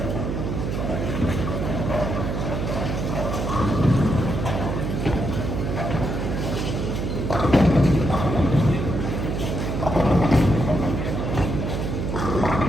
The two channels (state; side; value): noise; right; hum, 2 dB below the sound